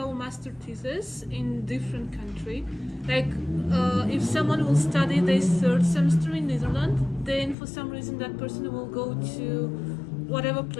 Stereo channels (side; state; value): right; drops out; at 7.6 s